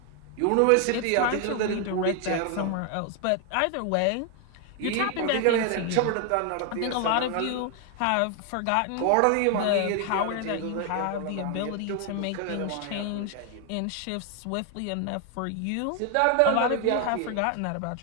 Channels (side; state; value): both; different; correlation 0.01